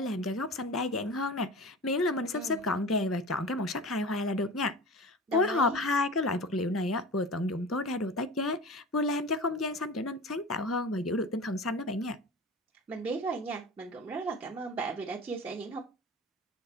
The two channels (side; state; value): both; normal; correlation 0.34